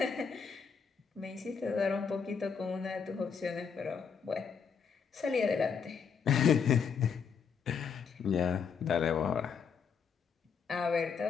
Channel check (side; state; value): right; quieter; 6.3 dB